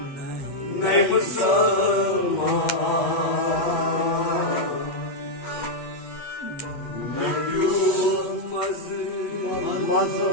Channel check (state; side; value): late; right; 8.2 ms